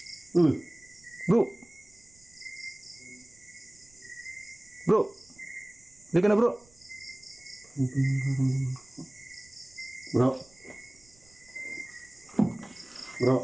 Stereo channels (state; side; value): noise; right; rumble, 28 dB below the sound